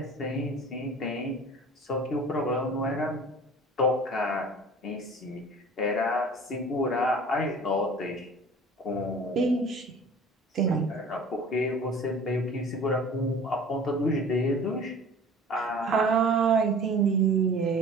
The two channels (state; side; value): normal; both; correlation 0.44